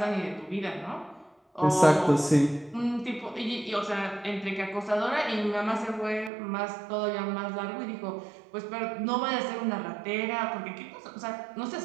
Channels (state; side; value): drops out; left; at 6.3 s